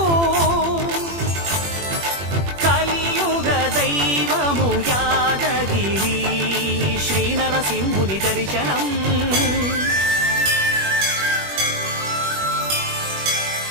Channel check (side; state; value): left; late; 21 ms